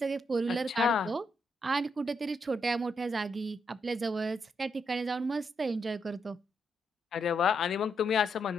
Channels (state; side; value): normal; both; correlation 0.79